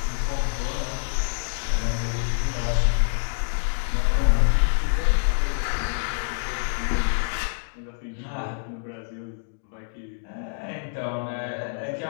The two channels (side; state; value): right; silent; digital silence